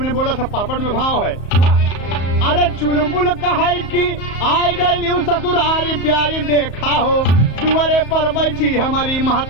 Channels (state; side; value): late; right; 34 ms